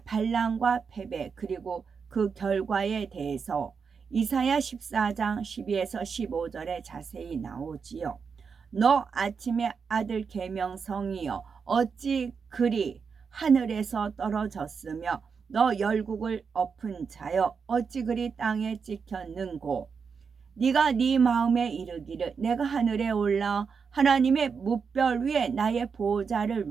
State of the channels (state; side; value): quieter; left; 5.8 dB